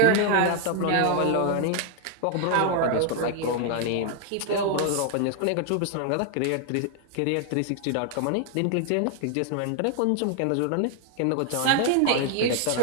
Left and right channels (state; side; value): different; both; correlation 0.00